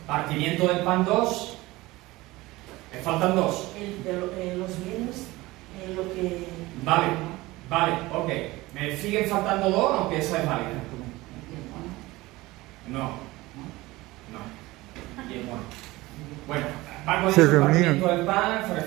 Partimiento del pan 2. Me faltan 2. Los bienes, lo que... Vale, ok. Me siguen faltando 2, aunque esa es válida. No. Bien, bueno, va con Se el reunían. partimiento del pan, se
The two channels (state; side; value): quieter; left; 19.8 dB